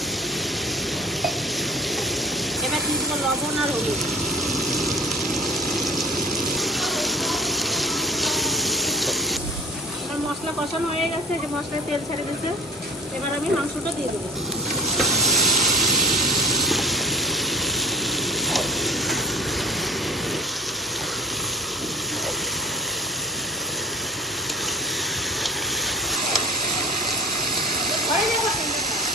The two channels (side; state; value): both; normal; correlation 0.41